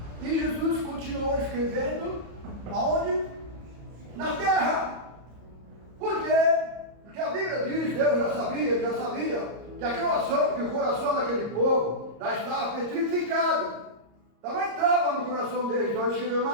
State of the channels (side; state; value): left; late; 34 ms